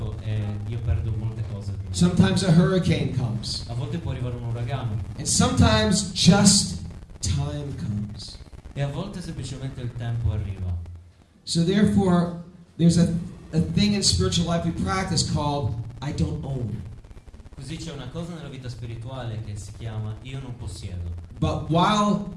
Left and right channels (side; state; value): both; identical; correlation 1.00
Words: e io perdo molte cose. Sometimes a hurricane comes. A volte può arrivare un uragano. And sometimes just time comes. E a volte semplicemente il tempo arriva. So therefore, there's a thing in spiritual life we practice called I don't own. Così c'è una cosa nella vita spirituale che si chiama io non possiedo. But while